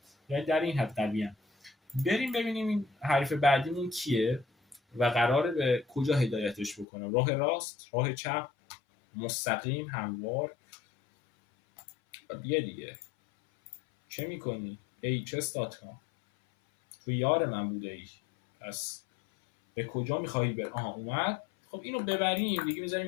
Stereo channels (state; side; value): drops out; right; at 6.9 s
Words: یعنی در این حد قویه. بریم ببینیم این حریف بعدیمون کیه و قراره به کجا هدایتش بکنم. راه راست، راه چپ، مستقیم، هموار. دیگه چه میکنی؟ hs.com تو یار من بوده ای، پس به کجا میخوایی بر؟ اومد. خب اینو ببریم دیگه، میذاریم